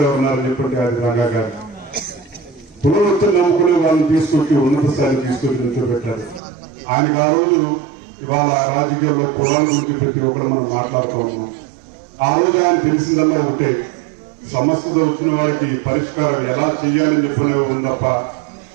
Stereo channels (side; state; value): left; drops out; at 6.4 s